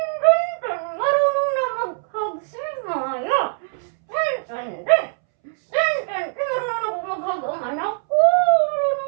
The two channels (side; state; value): left; silent; 64 dB below the other